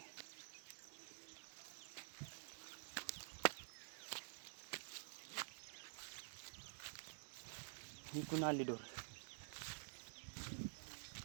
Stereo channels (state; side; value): silent; left; digital silence